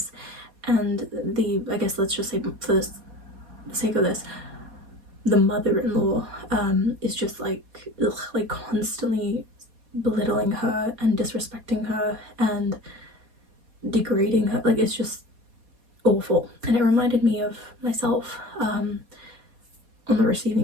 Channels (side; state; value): left; late; 4.2 ms